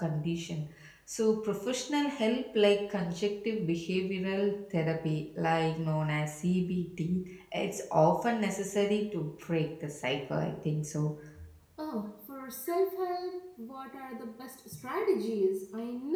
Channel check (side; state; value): both; identical; correlation 1.00